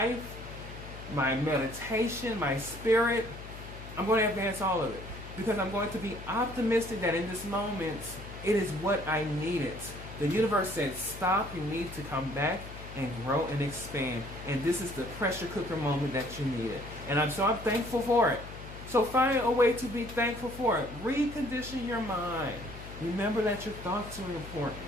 my meditation, my spirit. I'm going to advance all of it because I'm going to be optimistic that in this moment, it is what I needed. The universe said, stop, you need to come back and grow and expand. And this is the pressure cooker moment that you needed. And I'm thankful for it. So find a way to be thankful for it. Recondition your mind. Remember that your thoughts are important.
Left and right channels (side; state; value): left; noise; hum, 13 dB below the sound